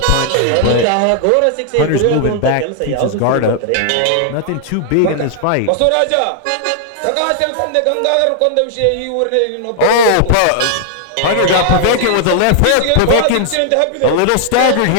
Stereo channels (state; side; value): different; both; correlation 0.00